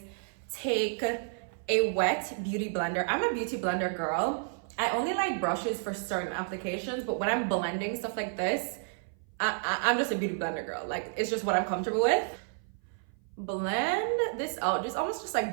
take a wet beauty blender. I'm a beauty blender girl. I only like brushes for certain applications, but when I'm blending stuff like this, I'm just a beauty blender girl. Like it's just what I'm comfortable with. Blend this out, just almost just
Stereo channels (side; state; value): left; silent; 56 dB below the other